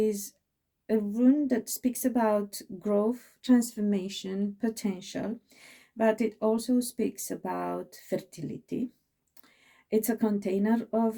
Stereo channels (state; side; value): identical; both; correlation 1.00